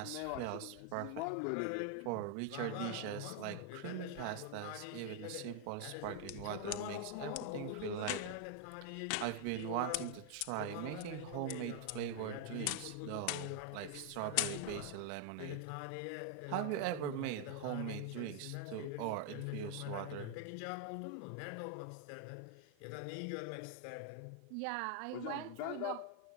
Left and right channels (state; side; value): different; both; correlation 0.00